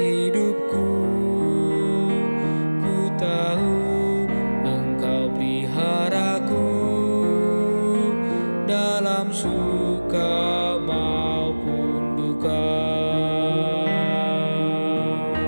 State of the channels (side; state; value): both; inverted; correlation -1.00